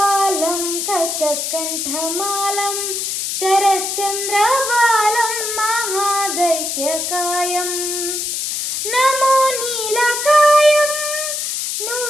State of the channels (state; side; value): noise; left; hiss, 2 dB below the sound